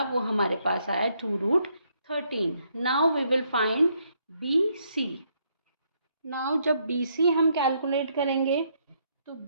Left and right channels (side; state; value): both; inverted; correlation -0.73